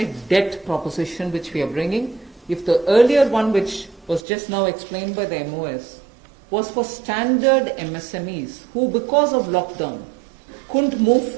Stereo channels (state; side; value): drops out; left; at 4.2 s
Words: debt proposition which we are bringing. If the earlier one, which was just now explained by the MOS, was for standard MSMEs who, because of lockdown, couldn't move